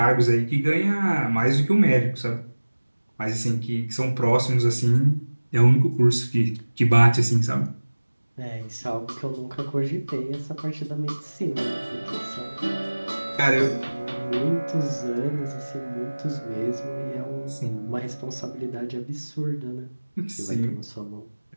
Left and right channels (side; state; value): both; inverted; correlation -1.00